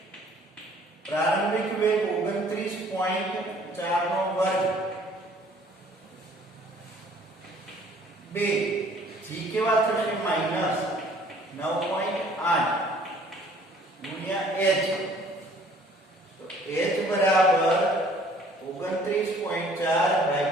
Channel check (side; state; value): both; normal; correlation 0.56